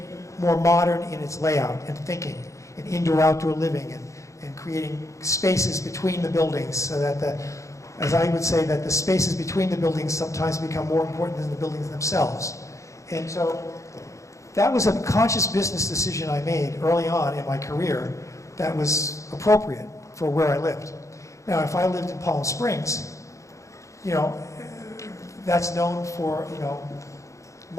more modern in its layout and thinking, and indoor-outdoor living, and creating spaces between the buildings, so that as I would say, that the spaces between the buildings sometimes become more important than the buildings themselves. And so that was a conscious business decision I made early on in my career that was appropriate for where I lived. Now, if I lived in Palm Springs, that's known for,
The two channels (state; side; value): late; right; 0.15 ms